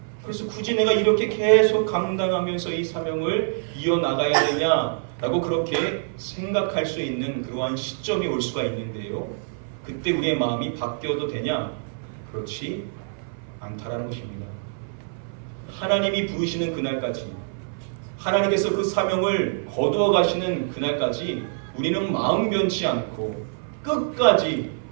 그래서 굳이 내가 이렇게 계속 감당하면서 이 사명을 이어나가야 되냐라고 그렇게 생각할 수 있는 그러한 시점이 올 수가 있는데요. 그때 우리의 마음이 바뀌어도 되냐? 그렇지 않다라는 것입니다. 하나님이 부르시는 그날까지, 하나님께서 그 사명을 거두어 가시는 그날까지 우리는 마음 변치 않고 끝까지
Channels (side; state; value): left; silent; 58 dB below the other